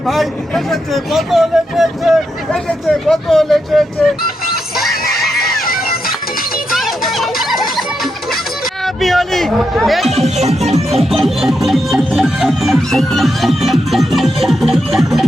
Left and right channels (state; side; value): normal; both; correlation 0.84